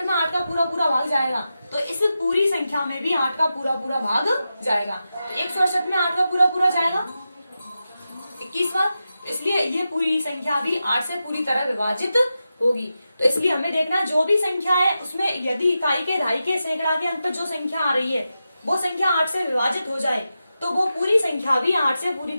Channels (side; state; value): both; inverted; correlation -0.90